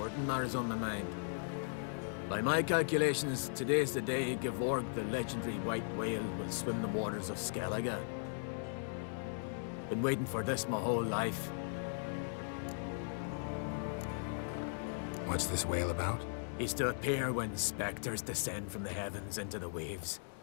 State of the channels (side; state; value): right; silent; digital silence